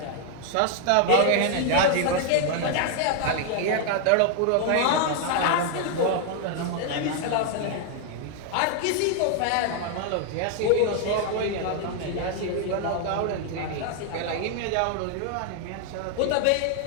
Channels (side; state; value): both; different; correlation 0.00